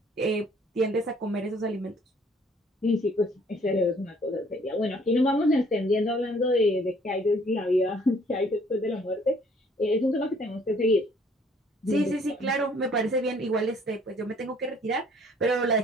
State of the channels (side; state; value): both; normal; correlation 0.59